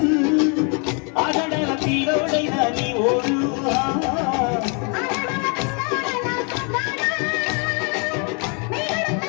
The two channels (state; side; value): quieter; right; 36.0 dB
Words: ఆగడాల పిల్లోడైనా నీ ఓడు